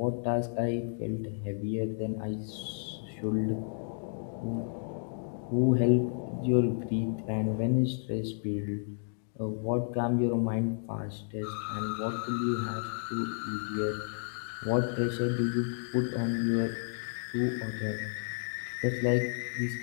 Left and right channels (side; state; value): right; silent; digital silence